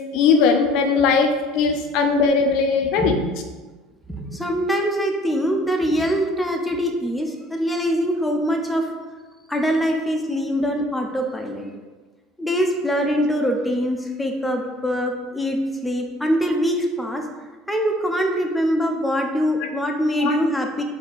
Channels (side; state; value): both; normal; correlation 0.56